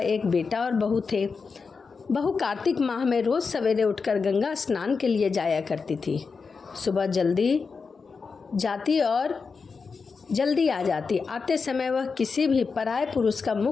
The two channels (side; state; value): right; quieter; 5.0 dB